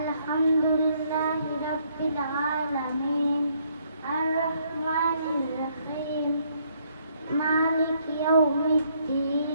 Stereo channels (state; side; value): inverted; both; correlation -0.69